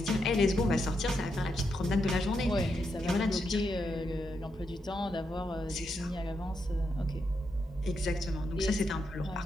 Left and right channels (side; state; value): both; normal; correlation 0.83